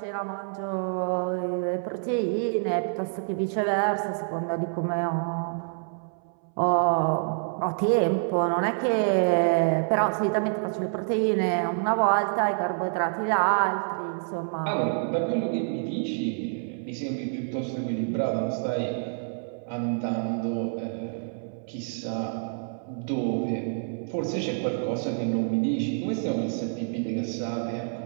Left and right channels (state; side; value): silent; left; 60 dB below the other